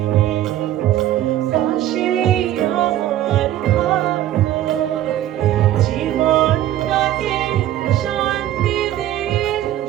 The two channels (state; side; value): quieter; left; 12.8 dB